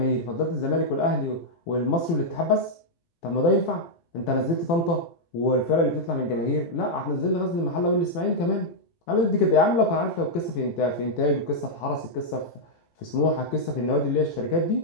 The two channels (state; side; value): late; right; 18 ms